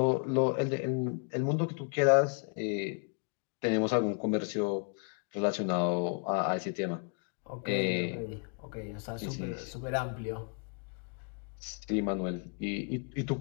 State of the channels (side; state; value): right; quieter; 39.8 dB